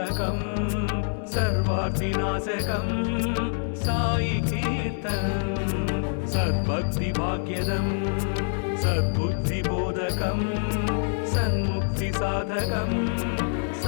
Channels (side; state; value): right; silent; 61 dB below the other